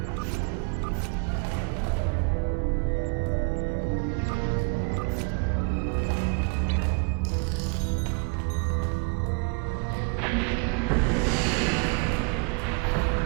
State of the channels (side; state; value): left; quieter; 33.8 dB